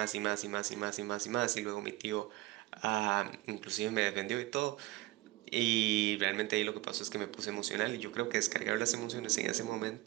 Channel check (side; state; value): left; quieter; 18.8 dB